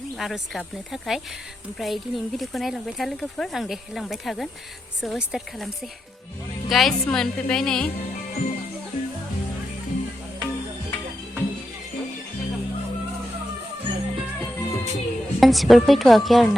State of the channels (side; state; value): both; normal; correlation 0.86